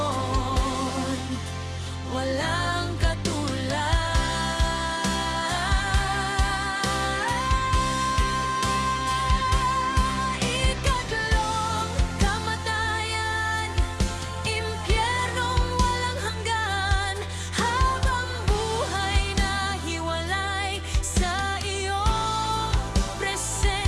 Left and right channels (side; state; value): both; identical; correlation 1.00